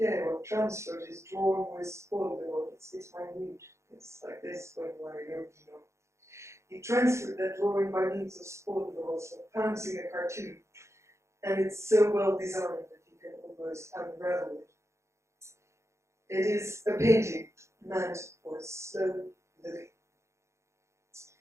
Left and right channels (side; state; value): left; late; 0.14 ms